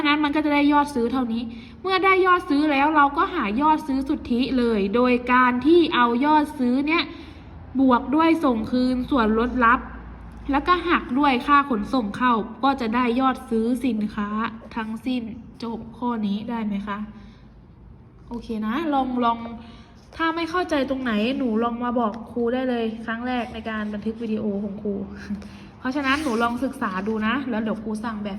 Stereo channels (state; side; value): identical; both; correlation 1.00